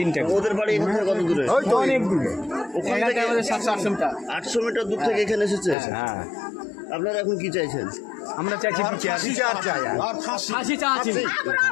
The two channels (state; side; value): drops out; right; at 5.8 s